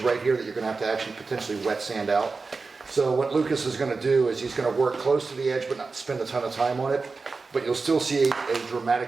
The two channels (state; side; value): quieter; left; 4.2 dB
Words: right here that you're gonna have to actually potentially wet sand out. So what Lucas is gonna do is he's gonna work close to the edge but not spend a ton of time on it, but you'll still see a